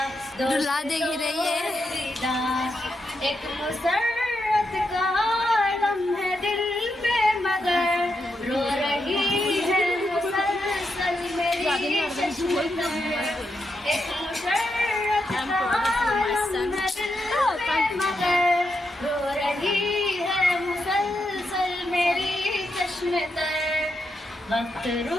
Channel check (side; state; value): both; normal; correlation 0.84